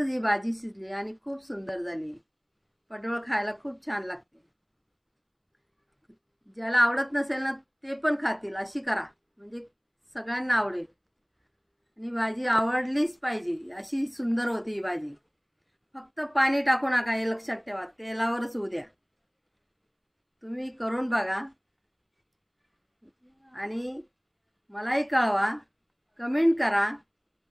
ही भाजी शिजली आणि खूप सुंदर झाली. पडवळ खायला खूप छान लागते. ज्याला आवडत नसेल ना ते पण खातील, अशी करा म्हणजे सगळ्यांना आवडेल. आणि भाजी आवडलीच पाहिजे, अशी सुंदर होती ही भाजी. फक्त पाणी टाकू नका, हे लक्षात ठेवा. तेलावरच होऊ द्या. तुम्ही करून बघा आणि मलाही कळवा, कमेंट करा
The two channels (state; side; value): identical; both; correlation 1.00